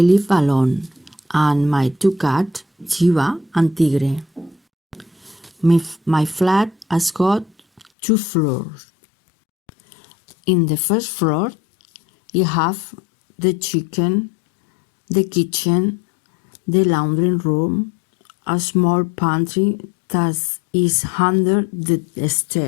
alone and my two cats, Chiva and Tigre. My flat has got 2 floors. In the first floor, you have the kitchen, the laundry room, a small pantry that is under the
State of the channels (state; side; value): drops out; right; at 7.9 s